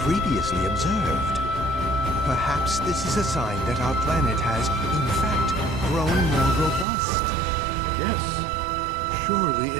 observed. Perhaps this is a sign that our planet has, in fact, grown more robust. Yes, surely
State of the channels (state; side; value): drops out; left; at 6.9 s